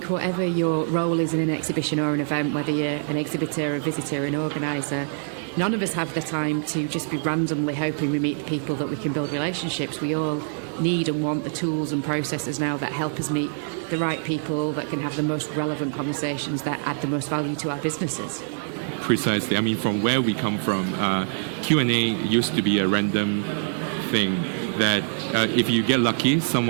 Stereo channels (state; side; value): silent; left; digital silence